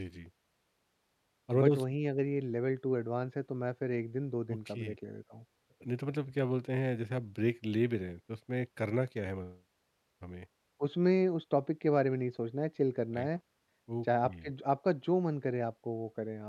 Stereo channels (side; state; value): both; identical; correlation 1.00